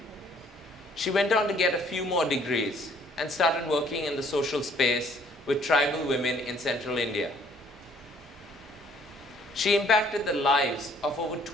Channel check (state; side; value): normal; both; correlation 0.61